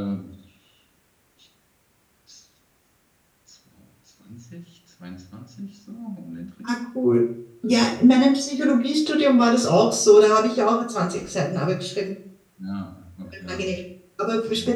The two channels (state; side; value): identical; both; correlation 1.00